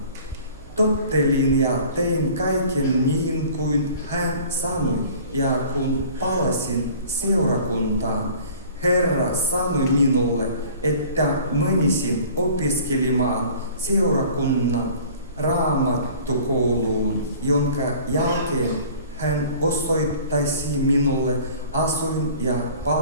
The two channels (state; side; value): inverted; both; correlation -0.47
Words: Tottelin ja tein kaiken niin kuin hän sanoi, ja kun palasin seurakuntaan, Herra sanoi minulle, että menisin opiskelemaan seurakunnan raamattukouluun, jonka jälkeen hän osoittaisi minulle asuin- ja